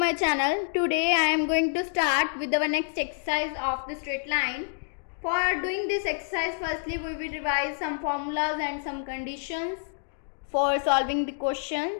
channel. Today I am going to start with our next exercise of the straight line. For doing this exercise, firstly we will revise some formulas and some conditions for solving the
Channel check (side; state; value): right; silent; digital silence